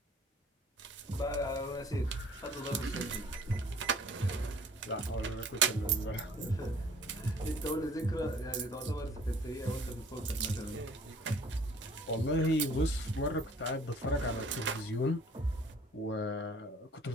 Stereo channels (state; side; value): normal; both; correlation 0.53